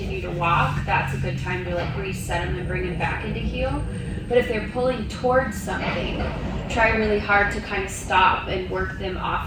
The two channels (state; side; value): identical; both; correlation 1.00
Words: to walk. That's a good time to like reset them and bring them back into heel. But if they're pulling towards something, try really hard to kind of stop and work them